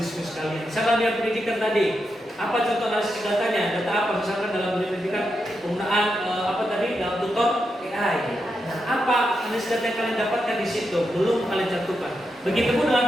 diskusi kalian. Misalkan dia pendidikan tadi, apa contoh analisis datanya? Data apa? Misalkan dalam pendidikan penggunaan dalam tutor AI. Nah, apa analisis data yang kalian dapatkan di situ? Belum kalian cantumkan. Begitupun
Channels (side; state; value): both; normal; correlation 0.85